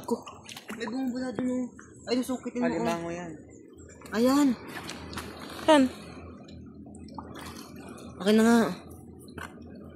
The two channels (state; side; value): identical; both; correlation 1.00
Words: May bumubula dun, oh. Ay, nasukitin mo, oh. Alimango yan. Ayan. Yan. Akin na nga.